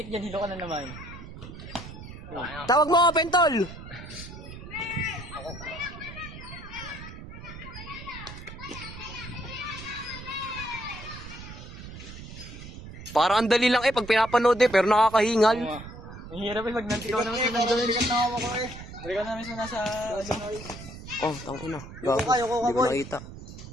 dyan, hilo ka na naman. Tawag mo, open tol. Parang ang dali lang eh pag pinapanood eh, pero nakakahingal. Ang hirap eh, pag ikaw naman sa nandun. Ikaw naman sa nasa... Oh, tangina. Yuko ka, Hindi ko boy. nakita.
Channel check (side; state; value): right; noise; rumble, 13 dB below the sound